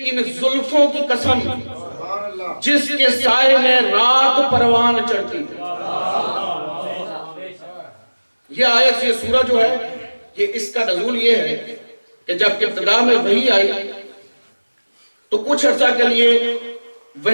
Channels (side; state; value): both; inverted; correlation -1.00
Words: ان زلفوں کی قسم جس کے سائے میں رات پروان چڑھتی یہ آیت یہ سورہ جو ہے یہ اس کا نزول یہ ہے کہ جب ابتدا میں وحی آئی تو کچھ عرصہ کے لیے